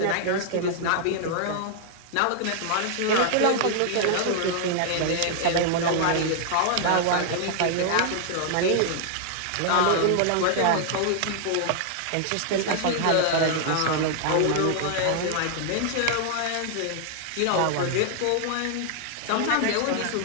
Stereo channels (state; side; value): different; both; correlation 0.00